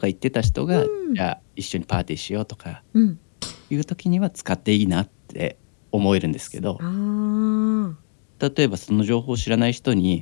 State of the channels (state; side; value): silent; right; digital silence